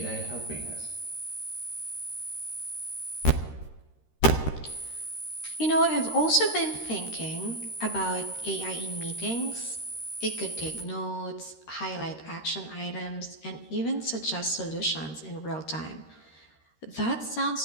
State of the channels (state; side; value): late; right; 13 ms